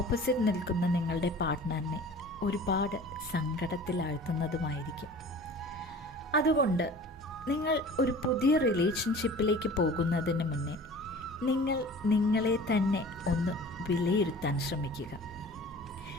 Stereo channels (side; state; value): both; normal; correlation 0.42